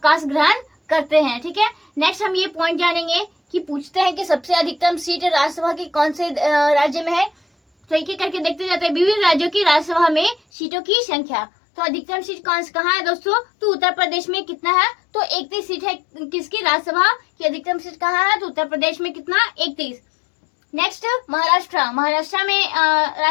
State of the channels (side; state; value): right; drops out; at 10.4 s